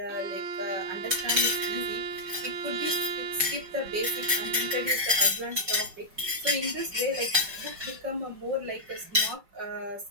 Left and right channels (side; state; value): left; late; 5.2 ms